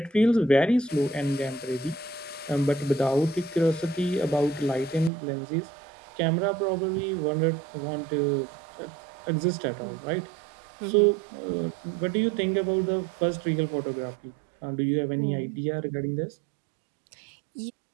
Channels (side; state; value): left; drops out; at 5.1 s